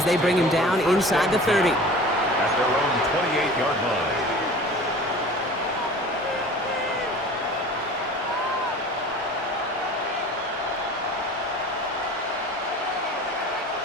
they bring him down inside the 30. At their own 28-yard line.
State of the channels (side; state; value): both; normal; correlation 0.42